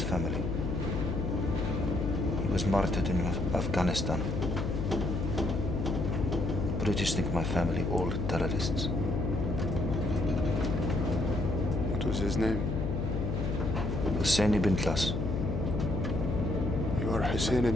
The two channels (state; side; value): noise; left; hum, 1 dB below the sound